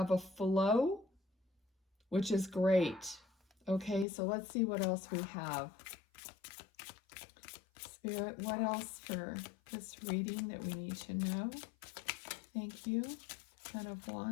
a flow, which is great. Okay, so let's see what else we have. Spirit, what else for this reading that we need to know? Thank you. Ten of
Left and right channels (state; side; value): drops out; right; at 4.0 s